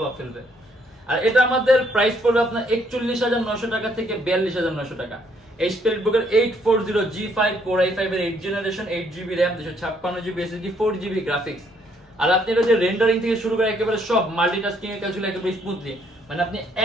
ফেলবে। আর এটা আমাদের প্রাইস পড়বে আপনার 41,900 টাকা থেকে 42,900 টাকা। HP EliteBook-এর 840G5 Core i5 এর 8 generation 8GB RAM 256GB SSD 4GB graphics. আর আপনি এটা যে রেন্ডারিং থেকে শুরু করে একেবারে সব মাল্টিটাস্কিং এর কাজগুলো একেবারে স্মুথলি, মানে আপনি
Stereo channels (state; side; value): normal; both; correlation 0.68